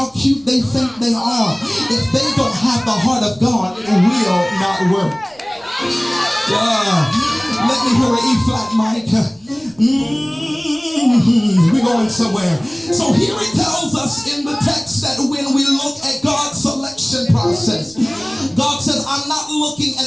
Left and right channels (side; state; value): right; noise; rumble, 29 dB below the sound